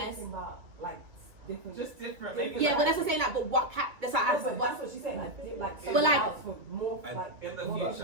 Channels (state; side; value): late; left; 2.5 ms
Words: Like different. Just different, maybe. Yeah, like, but that's what I'm saying. Like, but what That's what she's saying. Like But like, more like in the